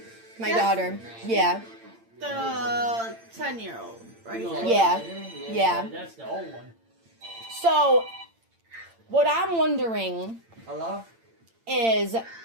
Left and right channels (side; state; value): left; late; 8.8 ms